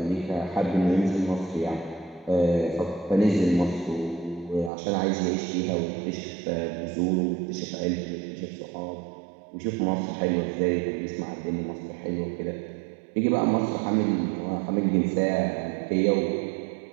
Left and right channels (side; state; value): left; drops out; at 4.7 s